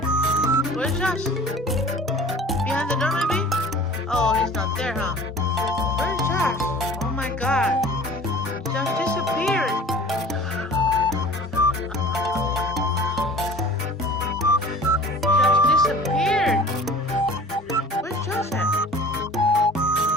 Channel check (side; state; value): both; normal; correlation 0.44